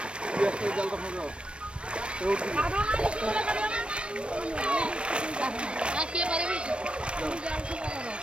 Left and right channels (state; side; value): late; left; 0.058 ms